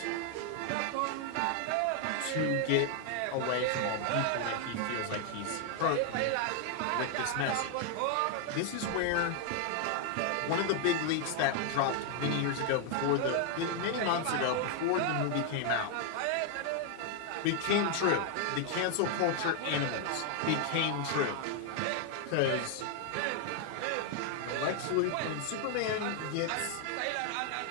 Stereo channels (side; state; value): both; different; correlation 0.00